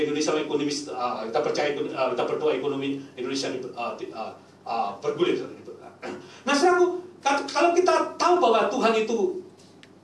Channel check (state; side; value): identical; both; correlation 1.00